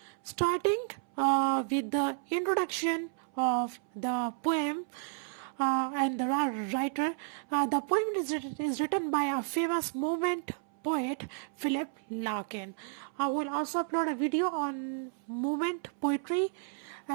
Starting with the introduction of the poem, and the writer. The poem is written by a famous movement poet, Philip Larkin. I will also upload a video on movement poetry,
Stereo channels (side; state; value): left; silent; 56 dB below the other